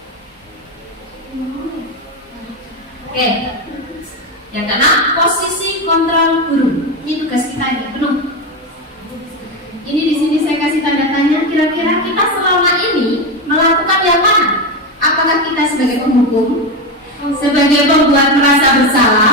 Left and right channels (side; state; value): both; normal; correlation 0.14